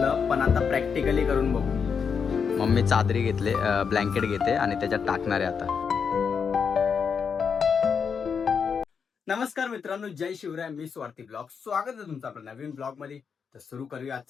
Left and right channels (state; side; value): quieter; right; 6.3 dB